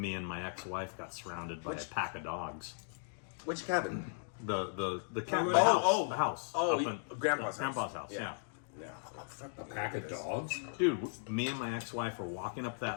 and my ex-wife got surrounded by a pack of dogs. which cabin? The cabin, the house. Oh, up in- Grandpa's house. Grandpa's house. Yeah. Yeah. A pack of dogs. Dude, me and my ex-wife are walking up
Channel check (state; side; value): silent; right; digital silence